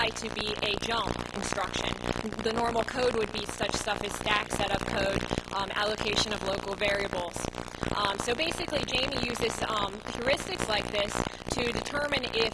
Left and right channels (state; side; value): identical; both; correlation 1.00